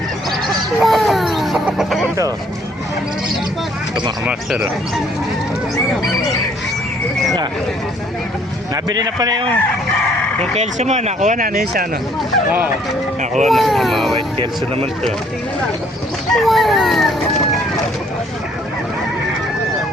Ito. Ito mga master o. Nabili na pala yung Kelso mo. Nakuha na isa ano? Oo. Nakuha na. Mga white Kelso naman ito.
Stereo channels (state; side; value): normal; both; correlation 0.62